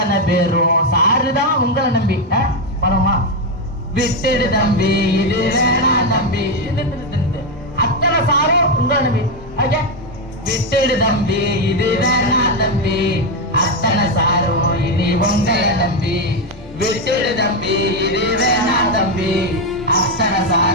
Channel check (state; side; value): normal; both; correlation 0.06